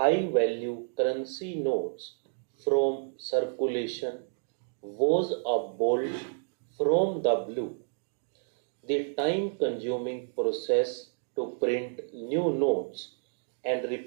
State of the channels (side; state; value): left; silent; digital silence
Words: value currency notes from circulation was a bolt from the blue. The time consuming process to print new notes and